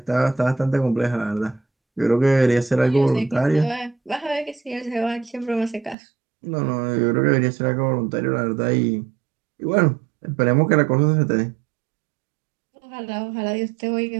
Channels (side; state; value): left; drops out; at 6.0 s